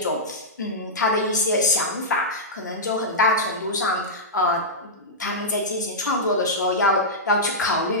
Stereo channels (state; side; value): normal; both; correlation -0.11